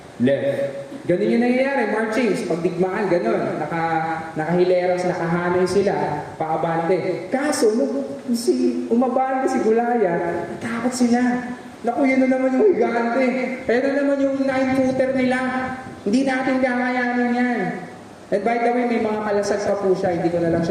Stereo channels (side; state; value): both; identical; correlation 1.00